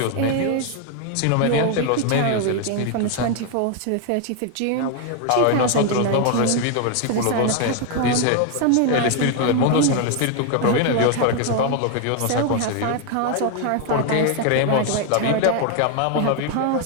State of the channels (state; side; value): different; both; correlation 0.01